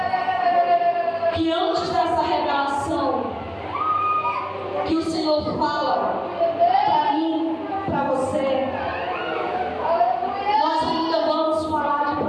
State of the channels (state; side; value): identical; both; correlation 1.00